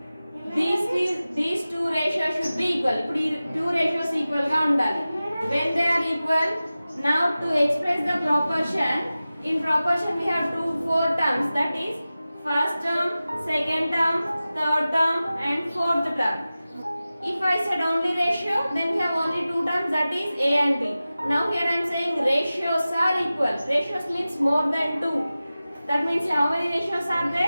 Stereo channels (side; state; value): both; inverted; correlation -0.96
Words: These two ratios should be equal. ఇప్పుడు ఈ two ratios equal గా ఉండాలి. When they are equal, now to express the proportion, in proportion we have four terms, that is first term, second term, third term and fourth term. If I said only ratio, then we have only two terms, that is A and B. Now here I am saying ratios are equal. Ratios means more than 2. That means how many ratios are